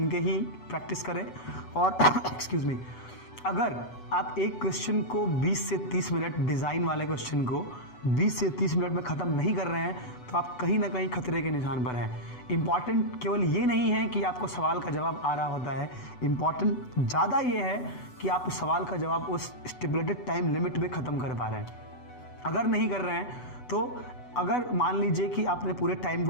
के ही प्रैक्टिस करें। और एक्सक्यूज़ मी, अगर आप एक क्वेश्चन को 20 से 30 मिनट, डिज़ाइन वाले क्वेश्चन को 20 से 30 मिनट में ख़त्म नहीं कर रहे हैं तो आप कहीं ना कहीं खतरे के निशान पर हैं। इम्पॉर्टेंट केवल ये नहीं है कि आपको सवाल का जवाब आ रहा होता है, इम्पॉर्टेंट ज़्यादा ये है कि आप उस सवाल का जवाब उस स्टिपुलेटेड टाइम लिमिट में ख़त्म कर पा रहे हैं। अगर नहीं कर रहे हैं तो अगर मान लीजिए कि आपने पूरे टाइम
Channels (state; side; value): late; right; 8.0 ms